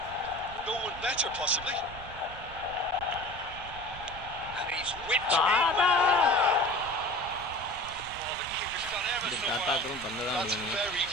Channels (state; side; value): noise; right; rumble, 15 dB below the sound